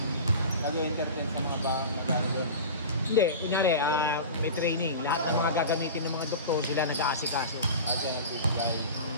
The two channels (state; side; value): inverted; both; correlation -0.32